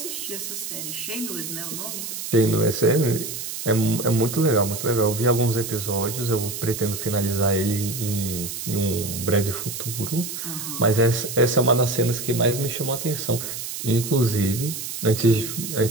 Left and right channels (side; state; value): right; noise; hiss, 7 dB below the sound